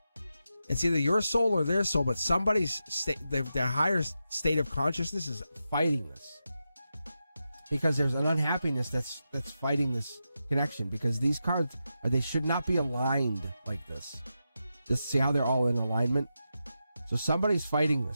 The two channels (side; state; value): both; inverted; correlation -0.88